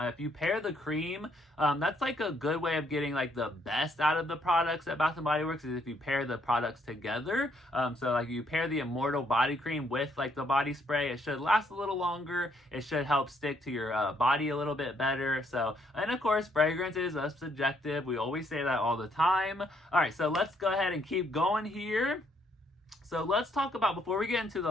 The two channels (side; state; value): both; normal; correlation 0.70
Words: you pair the cream, that's like a good way of getting like the best out of the products at Bath & Body Works, is if you pair the products together. So like you pair the Immortal body cream with like the body spray, it should last a little longer. It should help stick to your body a little bit better. So, and of course, fragrance is subjective. We always say that all the time. All right, so let's go ahead and keep going here. So let's talk about, before we get into